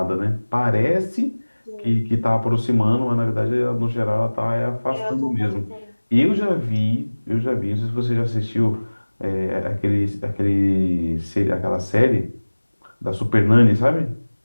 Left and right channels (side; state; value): both; inverted; correlation -1.00